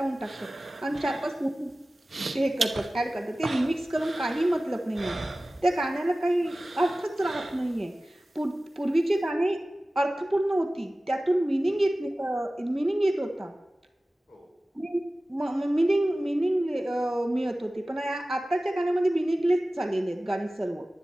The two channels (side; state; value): both; normal; correlation 0.97